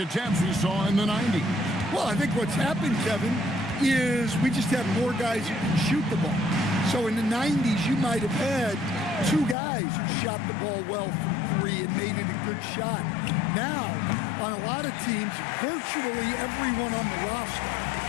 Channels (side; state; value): right; drops out; at 9.6 s